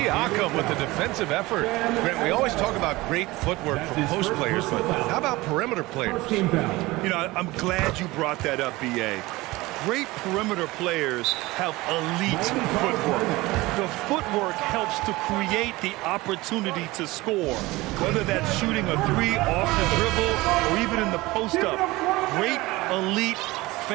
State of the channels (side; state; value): left; quieter; 20.4 dB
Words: with the defensive effort. Grant, we always talk about great footwork from post players, but how about perimeter players? You know, I'm glad you brought that up, B.A. Great perimeter players have elite footwork. The footwork helps to create the opportunity to score, whether that's shooting a 3 off the dribble or even in the post-up. Great, elite,